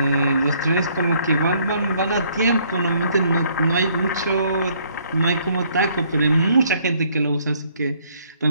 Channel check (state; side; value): inverted; both; correlation -0.65